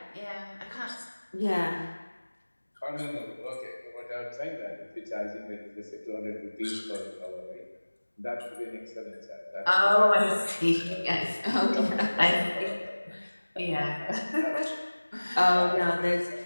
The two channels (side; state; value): both; inverted; correlation -1.00